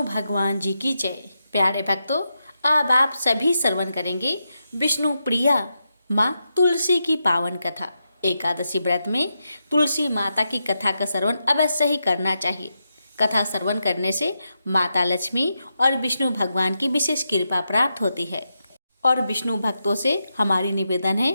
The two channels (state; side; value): inverted; both; correlation -0.86